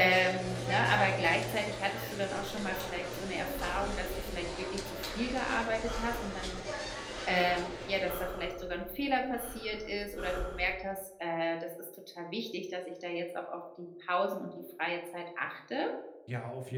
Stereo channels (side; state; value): both; identical; correlation 1.00